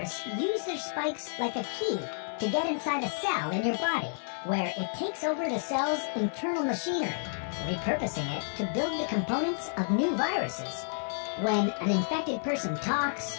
use their spikes like a key to get inside a cell in your body, where it takes over the cell's internal machinery, repurposing it to build the components of new viruses. When an infected person talks,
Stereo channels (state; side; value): silent; right; digital silence